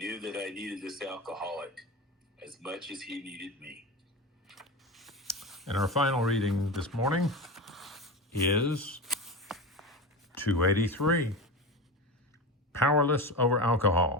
that I needed this alcoholic as much as he needed me. And our final reading this morning is 283, Powerless Over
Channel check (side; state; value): both; normal; correlation 0.24